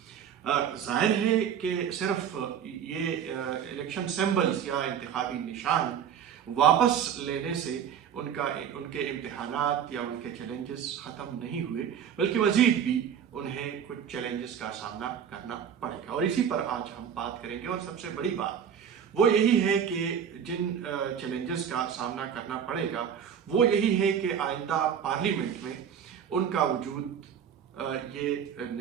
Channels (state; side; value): quieter; left; 8.3 dB